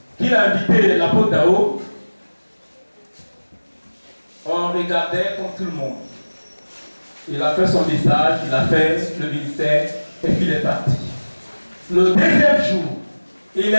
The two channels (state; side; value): inverted; both; correlation -1.00